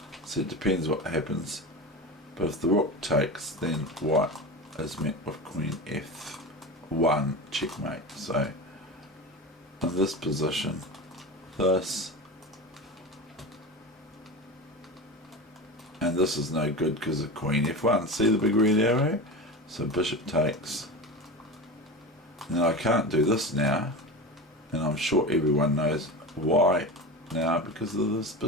so it depends what happens, but if the rook takes, then white is met with queen F1 checkmate. So in this position, this and this is no good because of queen F1. See the big red arrow? So bishop takes. And I can't do this now, and I'm sure everyone knows why now, because of this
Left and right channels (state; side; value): normal; both; correlation 0.27